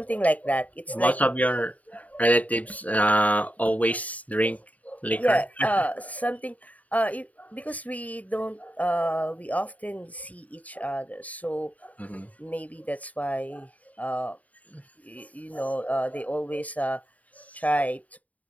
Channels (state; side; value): late; right; 0.072 ms